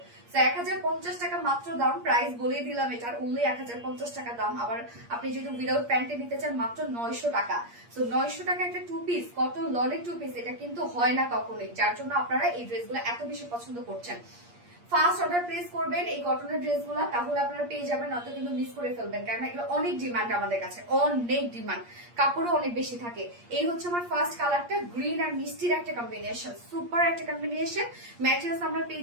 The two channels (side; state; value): left; late; 8.5 ms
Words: 1050 টাকা মাত্র দাম, প্রাইস বলে দিলাম এটার, অনলি 1050 টাকা দাম। আবার আপনি যদি উইদাউট প্যান্টে নিতে চান মাত্র 900 টাকা। সো 900 টাকা একটা টু পিস কটন লনের টু পিস, এটা কিন্তু হয় না কখনোই, যার জন্য আপনারা এই ড্রেসগুলো এত বেশি পছন্দ করছেন। ফার্স্ট অর্ডার প্লেস করবেন এই কটনের ড্রেসগুলো, তাহলে আপনারা পেয়ে যাবেন, নয়তো কিন্তু মিস করে ফেলবেন, কারণ এগুলো অনেক ডিমান্ড আমাদের কাছে, অনেক ডিমান্ড, কাপড়ও অনেক বেশি থাকে। এই হচ্ছে আমার ফার্স্ট কালারটা, গ্রিন আর মিষ্টির একটা কম্বিনেশন, সুপার একটা কম্বিনেশন। ম্যাটেরিয়ালস আমরা